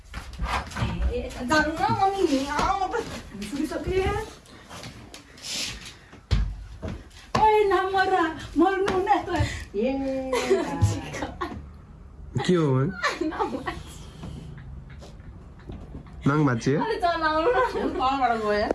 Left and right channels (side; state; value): both; identical; correlation 1.00